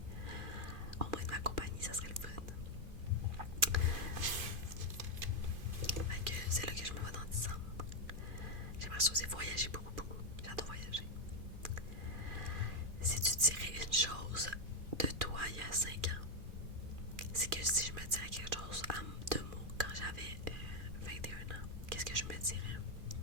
au moins de ma compagnie, ça serait le fun. Fait que c'est là que je me vois dans 10 ans. J'aimerais ça aussi voyager beaucoup, beaucoup. J'adore voyager. Si tu dirais une chose de toi il y a 5 ans, c'est que si je me dirais quelque chose en 2 mots quand j'avais 21 ans, qu'est-ce que je me dirais?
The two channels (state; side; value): late; left; 2.4 ms